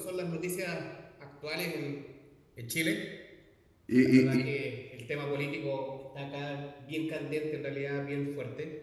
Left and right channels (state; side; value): identical; both; correlation 1.00